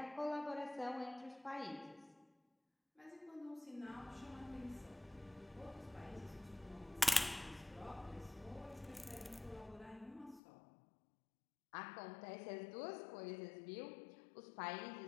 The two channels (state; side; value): drops out; right; at 10.4 s